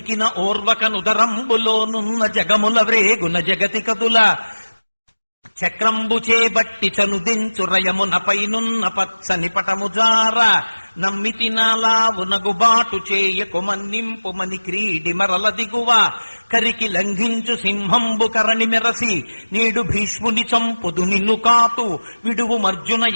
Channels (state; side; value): inverted; both; correlation -1.00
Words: ఓర్వక నుదరంబులోనున్న జగముల వ్రేగున జగతి కదుల చక్రంబు చేబట్టి చనుదించు రయమునపైనున్న పచ్చని పటముజార నమ్మితి నాలావునగుబాటు చేయకు మన్నింపు మని క్రీడి మరల దిగువ కరికి లంఘించు సింహంబు కరణి మెరసి నేడు భీష్ముని చంపుదు నిన్ను కాతు విడువు మర్జున